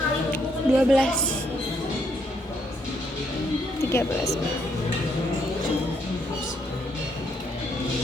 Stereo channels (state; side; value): normal; both; correlation 0.73